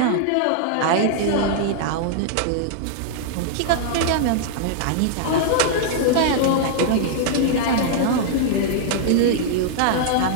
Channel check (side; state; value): both; different; correlation -0.01